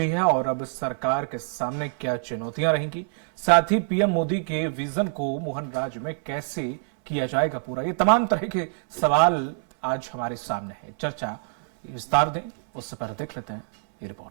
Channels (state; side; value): silent; left; 61 dB below the other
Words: है और अब सरकार के सामने क्या चुनौतियां रहेंगी, साथ ही पीएम मोदी के विजन को मोहन राज्य में कैसे किया जाएगा पूरा, ये तमाम तरह के सवाल आज हमारे सामने है। चर्चा विस्तार दें उससे पहले देख लेते हैं ये